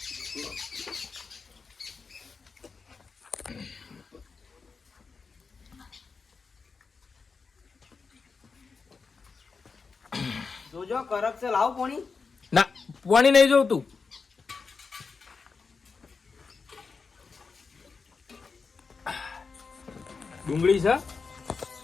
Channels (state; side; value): quieter; right; 4.9 dB